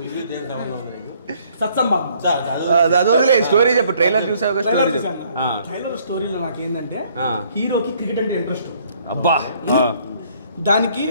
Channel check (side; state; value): both; inverted; correlation -0.63